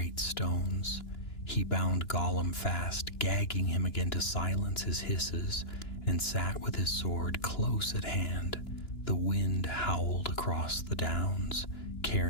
stones. He bound Gollum fast, gagging him again to silence his hisses, and sat with his sword close at hand. The wind howled across the downs,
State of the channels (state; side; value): late; right; 2.9 ms